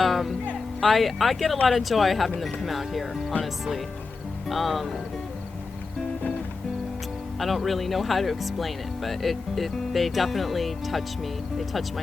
get a lot of joy having them come out here, honestly. I don't really know how to explain it, but they definitely touch me. They touch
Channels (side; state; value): right; quieter; 4.2 dB